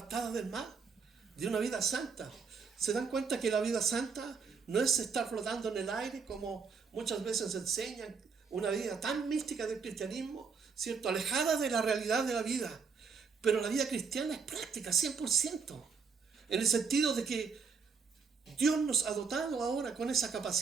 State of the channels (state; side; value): quieter; left; 5.5 dB